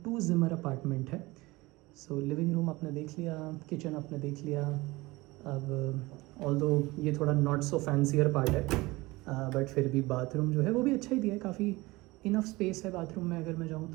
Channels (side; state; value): left; quieter; 21.4 dB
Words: 2 ज़िमर अपार्टमेंट है. सो लिविंग रूम आपने देख लिया, किचन आपने देख लिया. अब ऑल्दो ये थोड़ा नॉट सो फैंसियर पार्ट है, बट फिर भी बाथरूम जो है वो भी अच्छा ही दिया है, काफ़ी इनफ स्पेस है बाथरूम में. अगर मैं जाऊँ